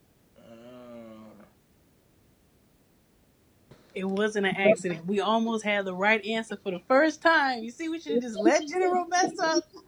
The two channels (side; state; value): both; identical; correlation 1.00